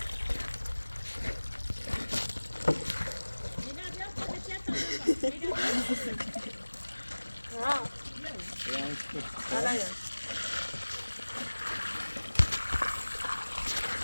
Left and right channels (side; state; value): both; inverted; correlation -1.00